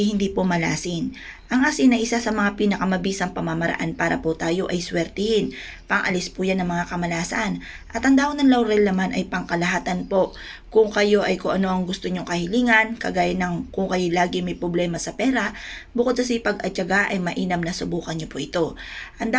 hindi po malasin. Ang asin ay isa sa mga pinakamabisang pamamaraan para po tayo ay swertihin. Pangalis po yan ng mga kamalasan. At ang dahon ng laurel naman ay pangkalahatan po. Kung kayo ay kung ano ang gusto nyong kahilingan, kagaya ng kung kayo lagi may problema sa pera, bukod sa sipag at tiyaga ay mainam na subukan nyo po ito. Ang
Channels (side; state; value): both; identical; correlation 1.00